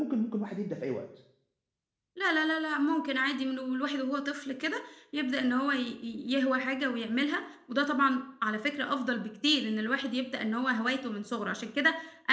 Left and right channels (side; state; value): both; identical; correlation 1.00